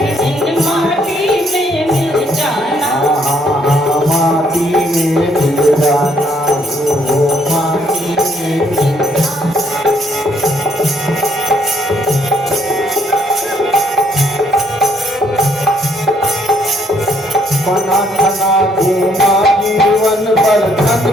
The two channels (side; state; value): both; normal; correlation 0.68